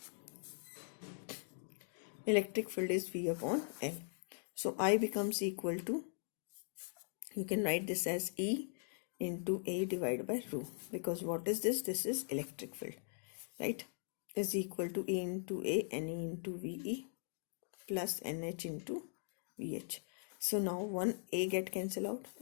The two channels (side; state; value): right; silent; digital silence